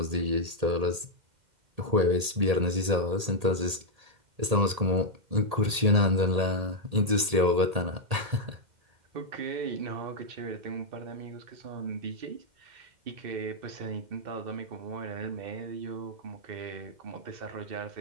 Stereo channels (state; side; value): late; left; 1.8 ms